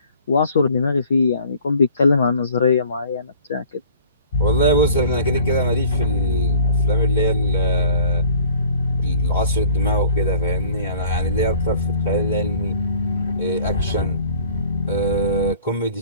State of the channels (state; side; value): inverted; both; correlation -0.51